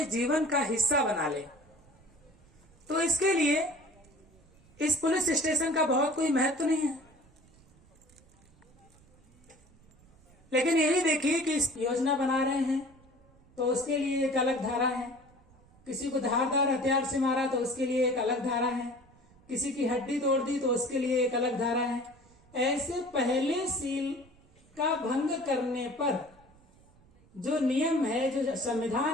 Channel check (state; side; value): noise; right; rumble, 28 dB below the sound